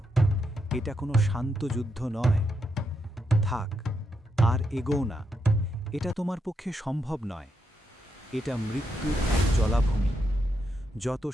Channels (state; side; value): normal; both; correlation 0.82